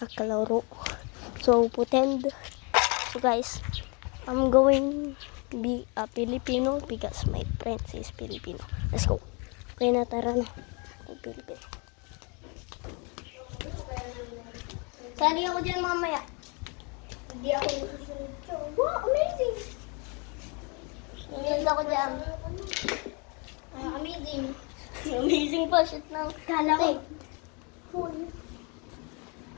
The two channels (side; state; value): right; quieter; 32.7 dB